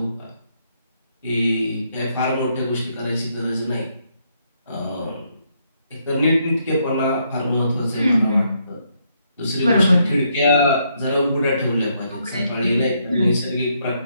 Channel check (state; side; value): inverted; both; correlation -0.75